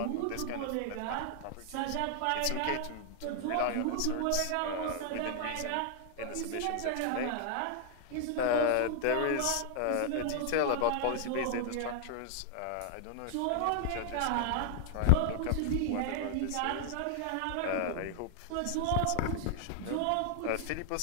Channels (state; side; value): different; both; correlation 0.00